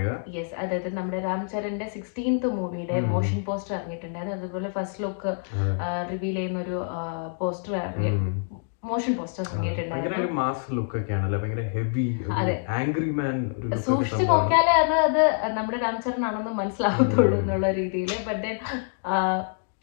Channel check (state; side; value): silent; right; digital silence